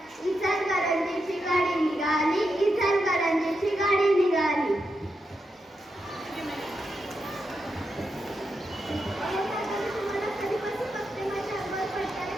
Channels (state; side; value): normal; both; correlation 0.85